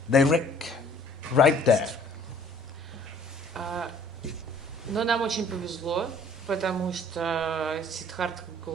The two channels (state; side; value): normal; both; correlation 0.55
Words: Direct, right there. Но нам очень повезло, потому что Сиддхартха